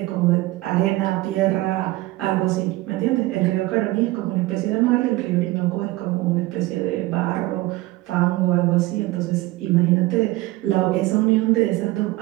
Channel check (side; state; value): left; quieter; 18.9 dB